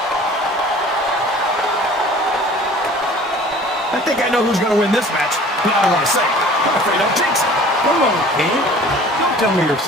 I think I know who's going to win this match, but I don't want to say it. I'm afraid I'll jinx it. Come on, King. Don't tell me you're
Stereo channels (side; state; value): both; normal; correlation 0.47